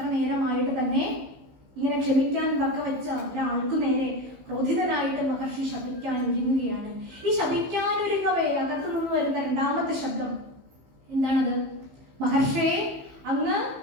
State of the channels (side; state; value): left; late; 15 ms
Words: നേരമായിട്ട് തന്നെ ഇങ്ങനെ ക്ഷമിക്കാൻ വച്ച ഒരാൾക്കു നേരെ ക്രോധിതനായിട്ട് മഹർഷി ശപിക്കാൻ ഒരുങ്ങുകയാണ്. ഈ ശപിക്കാൻ ഒരുങ്ങവേ അകത്തു നിന്ന് വരുന്ന 2ാമത്തെ ശബ്ദം എന്താണത്? മഹർഷിയെ, അങ്ങ്